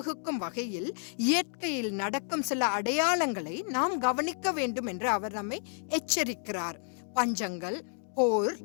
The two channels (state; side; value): silent; right; 57 dB below the other